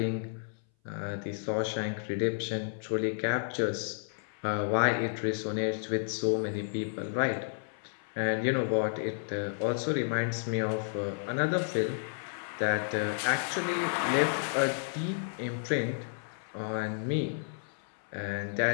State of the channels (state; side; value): silent; right; 57 dB below the other